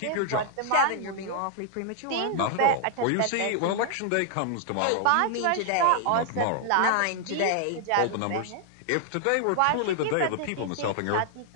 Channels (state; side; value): different; both; correlation 0.00